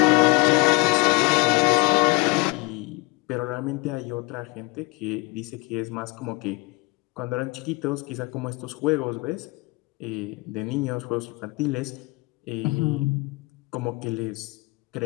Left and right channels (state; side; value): quieter; right; 25.2 dB